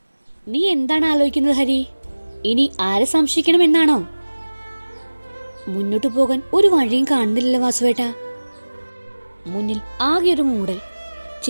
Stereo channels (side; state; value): both; inverted; correlation -1.00